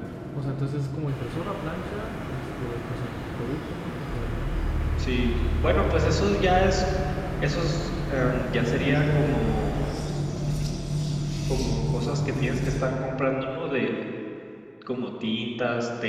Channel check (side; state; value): both; identical; correlation 1.00